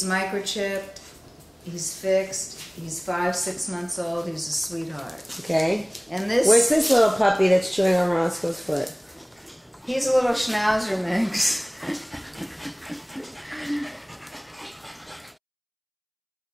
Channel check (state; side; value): identical; both; correlation 1.00